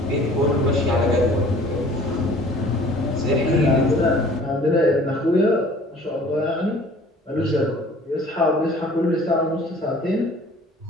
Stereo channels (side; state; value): both; normal; correlation 0.50